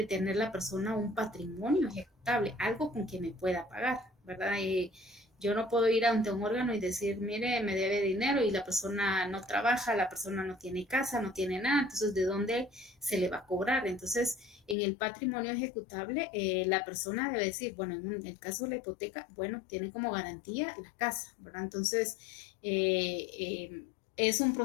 tener la persona un patrimonio ejecutable, algo con que me pueda pagar, ¿verdad? Yo no puedo ir ante un órgano y decir, mire, me debe dinero y la persona no trabaja, la persona no tiene casa, no tiene nada, entonces ¿de dónde se le va a cobrar? Entonces, en el patrimonio ejecutable, la persona debe decir, bueno, en el caso de la hipoteca, bueno, tiene como garantía la casa, ¿verdad? Entonces, es un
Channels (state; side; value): drops out; right; at 14.8 s